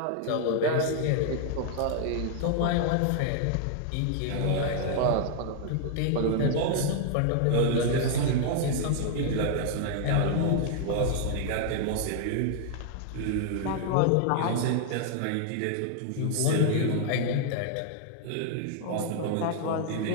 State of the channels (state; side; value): different; both; correlation -0.01